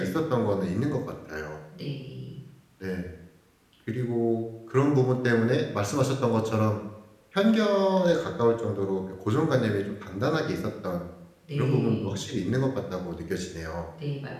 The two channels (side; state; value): both; identical; correlation 1.00